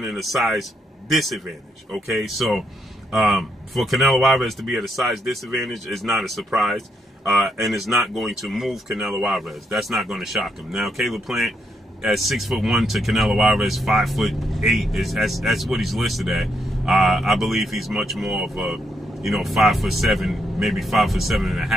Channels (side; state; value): both; normal; correlation 0.78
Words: in a size disadvantage, okay? So, for Canelo Alvarez to be at a size disadvantage is not a surprise, and it's not going to move Canelo Alvarez. That's not going to shock him. Now, Caleb Plant at 6'1" to Canelo Alvarez 5'8" that's what he's listed at. I believe he's much more of a, you know, 5'7", maybe